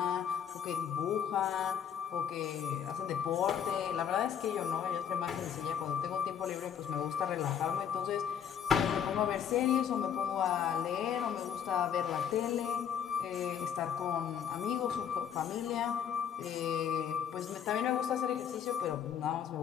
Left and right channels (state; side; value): quieter; right; 8.5 dB